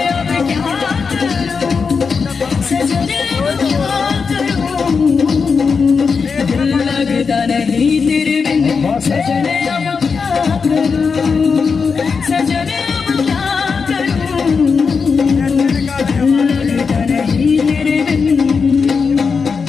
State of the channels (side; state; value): right; quieter; 5.3 dB